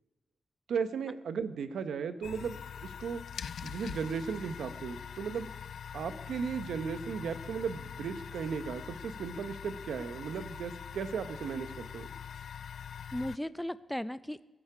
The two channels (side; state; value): left; quieter; 3.1 dB